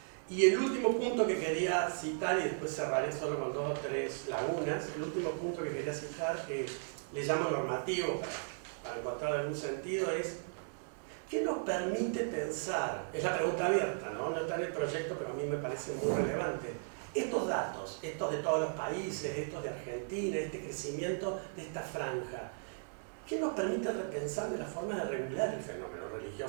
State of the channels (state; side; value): silent; left; 54 dB below the other